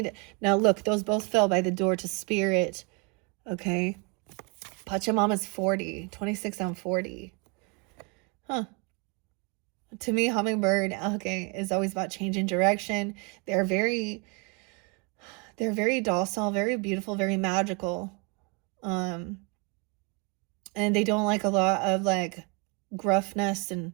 Now, look, those both fell by the door to spirit. Okay. Pachamama's 40. 26 on 40. Huh. To me, hummingbird, okay, is always about changing direction. They're very docile, very beautiful, very magical. And they don't like a lot of like gruffness and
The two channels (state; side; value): quieter; left; 32.4 dB